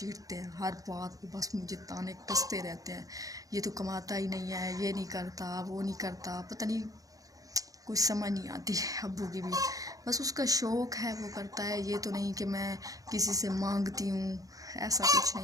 हैं, हर बात पर बस मुझे ताने कसते रहते हैं, ये तो कमाता ही नहीं है, ये नहीं करता, वो नहीं करता, पता नहीं कुछ समझ नहीं आती अब्बू की भी। बस उसका शौक़ है, वो करता है, ये तो नहीं कि मैं किसी से मांगती हूँ, ऐसा कुछ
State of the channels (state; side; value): late; left; 0.17 ms